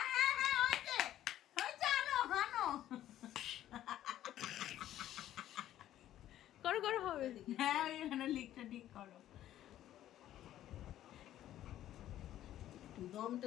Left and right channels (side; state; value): right; quieter; 12.6 dB